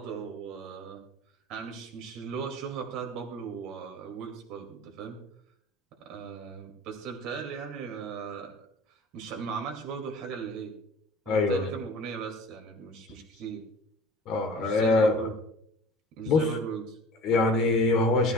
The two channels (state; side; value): normal; both; correlation 0.41